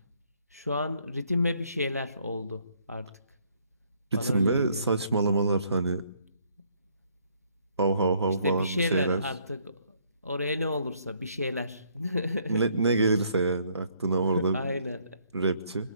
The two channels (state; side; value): inverted; both; correlation -0.67